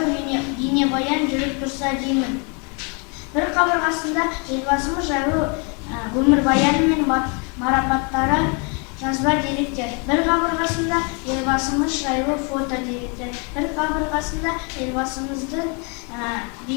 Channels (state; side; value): quieter; right; 34.6 dB